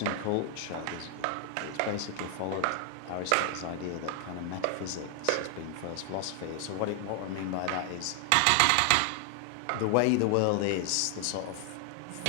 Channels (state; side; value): different; both; correlation 0.00